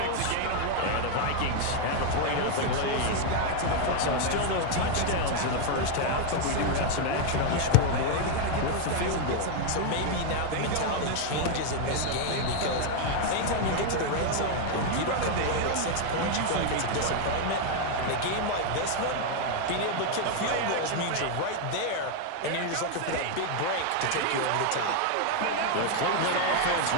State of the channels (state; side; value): different; both; correlation 0.01